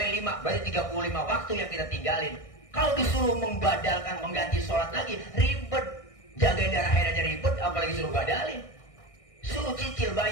5, berarti 35 waktu yang kita tinggalin. Kalau disuruh membadalkan, mengganti sholat lagi, ribet. Jagain darah haid aja ribet, apalagi suruh badalin. Suruh cicil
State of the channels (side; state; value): right; late; 1.6 ms